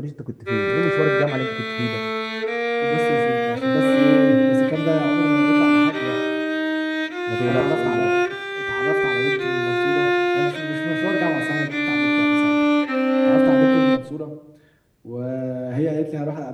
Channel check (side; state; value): both; identical; correlation 1.00